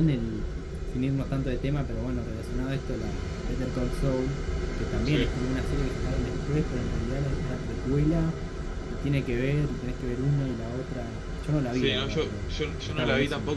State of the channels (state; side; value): identical; both; correlation 1.00